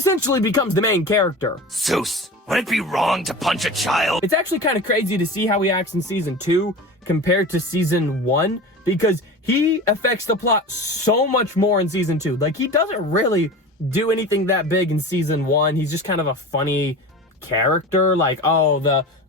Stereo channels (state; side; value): normal; both; correlation 0.33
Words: becomes the main character. Zeus, would it be wrong to punch a child? It's actually kind of crazy to see how he acts in season 2 compared to season 1, because he affects the plot so much more in season 2. Like, he doesn't really do anything that big in season 1. He's just kind of a funny character, like, oh, the